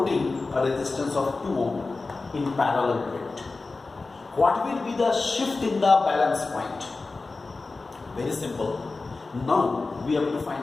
a resistance of 2 ohm in parallel to it, what will be the shift in the balance point? Very simple. Now we have to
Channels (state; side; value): quieter; right; 3.7 dB